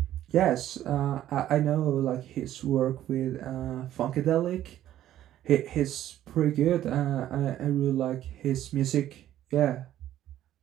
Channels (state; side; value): quieter; left; 12.5 dB